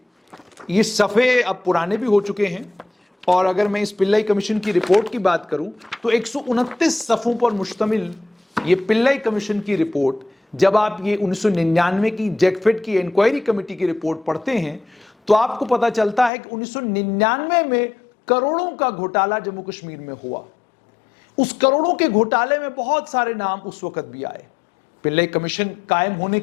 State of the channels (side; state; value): right; drops out; at 16.3 s